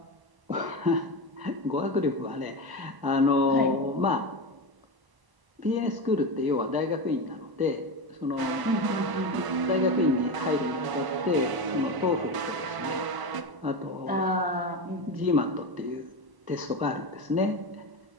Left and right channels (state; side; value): late; left; 1.0 ms